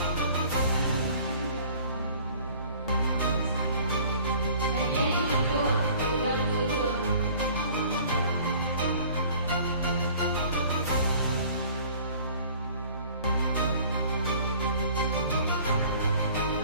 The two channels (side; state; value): both; inverted; correlation -0.50